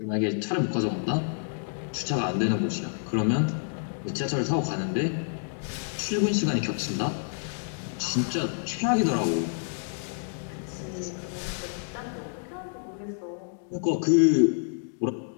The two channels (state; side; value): silent; right; digital silence